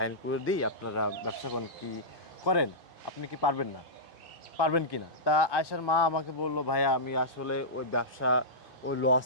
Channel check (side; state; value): left; late; 2.5 ms